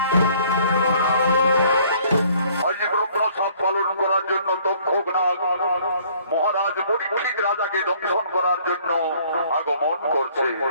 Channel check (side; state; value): both; inverted; correlation -0.59